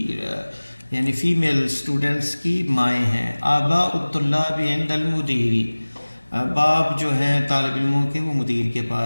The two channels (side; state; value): both; inverted; correlation -1.00